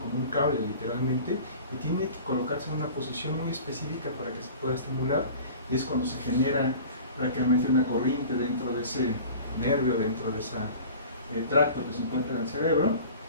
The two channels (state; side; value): inverted; both; correlation -0.41